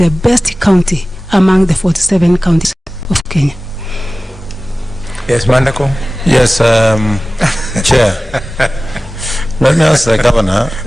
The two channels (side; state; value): both; normal; correlation 0.97